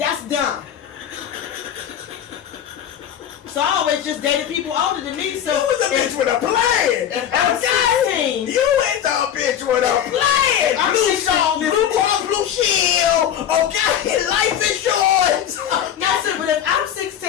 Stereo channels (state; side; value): quieter; right; 9.8 dB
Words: dumb. So I always just dated people older than me. So you was a bitch with a plan. Okay. You was a bitch with a plan. I'm blue cross, blue shield. Okay, life insurance. Yes, sir. But if I'm